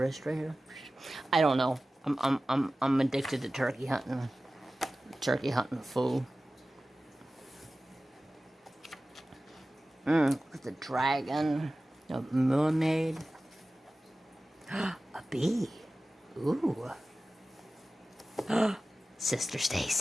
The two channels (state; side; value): normal; both; correlation 0.96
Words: right here. I don't know. I'm addicted to turkey hunting. Turkey hunting fool. Look at the dragon. A mermaid. A bee. Ooh. Sister